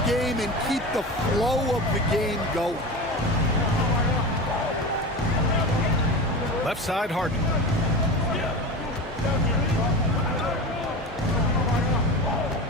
game and keep the flow of the game going. Left side, Harden.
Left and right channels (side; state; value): both; normal; correlation 0.28